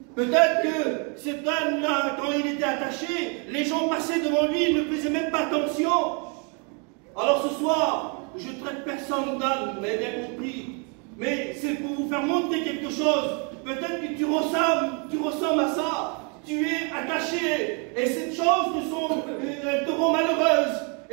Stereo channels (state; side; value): quieter; left; 36.1 dB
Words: Peut-être que cet âne-là, quand il était attaché, les gens passaient devant lui, ils ne faisaient même pas attention. Alors ce soir, je traite personne d'âne, vous m'avez bien compris. Mais c'est pour vous faire montrer quelque chose. Peut-être que tu ressembles à ça. Tu es attaché. Et cette chose te rend malheureuse.